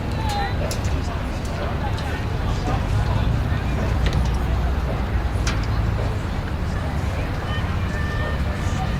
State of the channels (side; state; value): both; identical; correlation 1.00